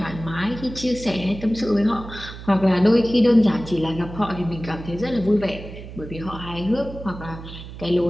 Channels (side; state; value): right; noise; hum, 13 dB below the sound